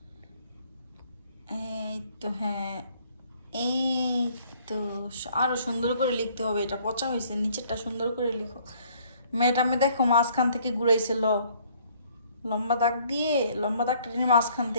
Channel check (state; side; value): inverted; both; correlation -0.61